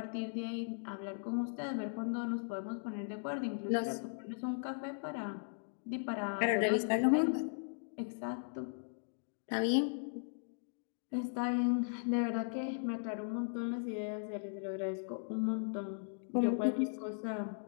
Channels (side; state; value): right; silent; digital silence